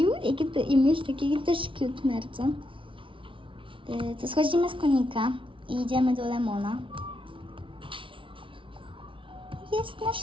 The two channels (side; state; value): left; late; 0.25 ms